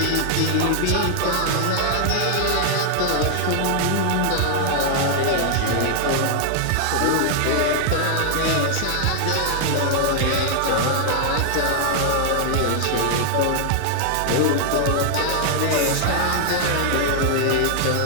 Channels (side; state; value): both; different; correlation -0.01